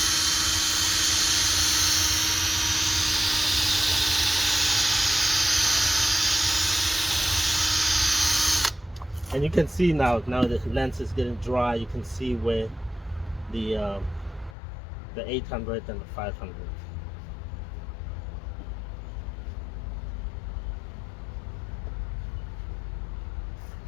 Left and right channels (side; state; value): right; drops out; at 14.6 s